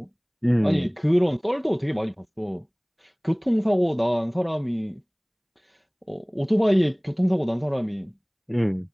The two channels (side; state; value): both; identical; correlation 1.00